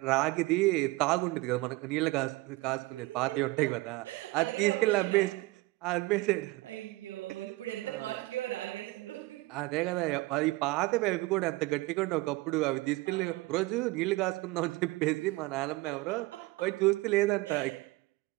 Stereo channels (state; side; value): quieter; left; 21.5 dB